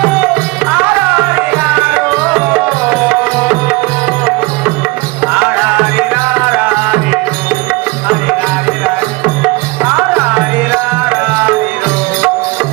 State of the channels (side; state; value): left; quieter; 23.8 dB